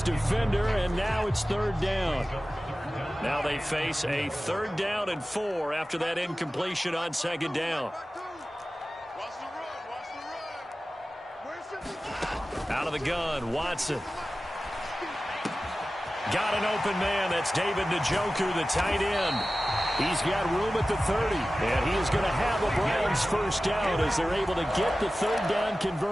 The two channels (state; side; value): normal; both; correlation 0.95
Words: defender, and now it's 3rd down. Now they face a 3rd down and 4 after that incompletion on 2nd down. Out of the gun, Watson. Got an open man. That's David Njoku, the tight end. He's got room at the 30, and he is going to have a Browns 1st down as they're able to get the 3rd down